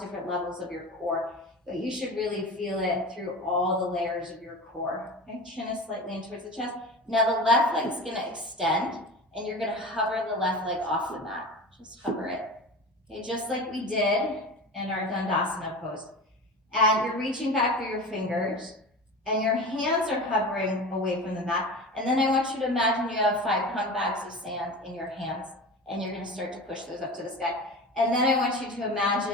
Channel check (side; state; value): both; normal; correlation 0.31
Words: different levels of your core, but you should really feel it through all the layers of your core. Okay, chin is slightly in towards the chest. Now the left leg is gonna extend and you're gonna hover the left leg off the mat. Just hover it. Okay, just like we did in our Uttanasana pose. And you're reaching back through your fingers and your hands are hovering away from the mat. And then I want you to imagine you have 5-pound bags of sand in your hands and you're gonna start to push those up to the sky. And then I want you to